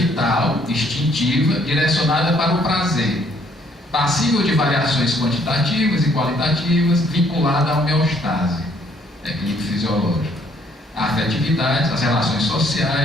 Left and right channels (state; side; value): normal; both; correlation 0.65